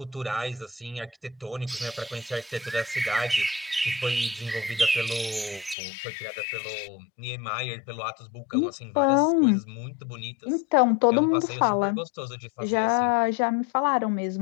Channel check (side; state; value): right; drops out; at 5.8 s